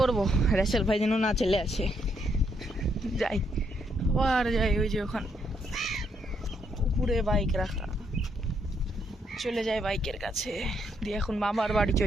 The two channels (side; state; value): both; normal; correlation 0.75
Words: পড়বো, র্যাসেল ভাই যেন না চলে আসে। যাই আবার যাই, ওই যে ওখানে উপরে বাইক রাখা, চলে যাই বাইকের কাছে দিয়ে। এখন মামার বাড়ি